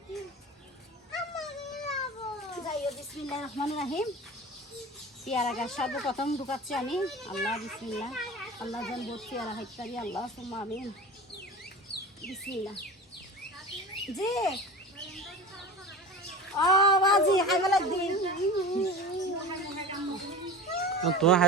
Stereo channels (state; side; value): normal; both; correlation 0.33